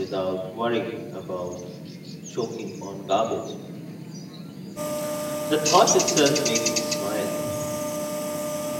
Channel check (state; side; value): identical; both; correlation 1.00